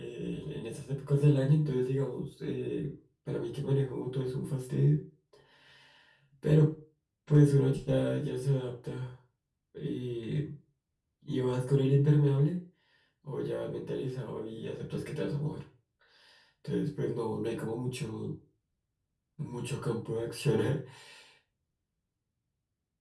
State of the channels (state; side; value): identical; both; correlation 1.00